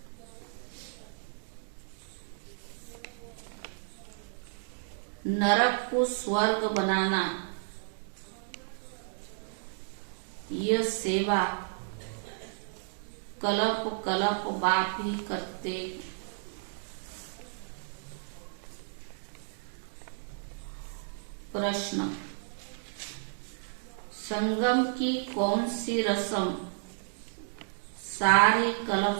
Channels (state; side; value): silent; left; digital silence